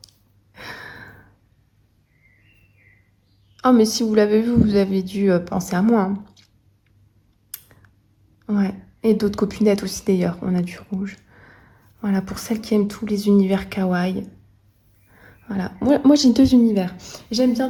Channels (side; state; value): both; identical; correlation 1.00